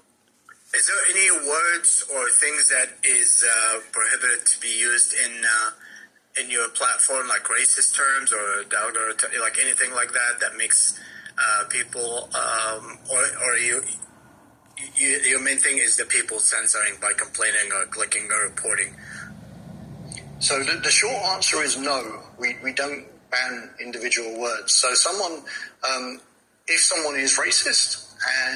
Is there any words or things that is prohibited to be used in your platform, like racist terms or like anything like that makes people or your main thing is the people censoring by complaining or clicking or reporting? So the short answer is no. We don't ban individual words. So if someone is racist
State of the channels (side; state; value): both; identical; correlation 1.00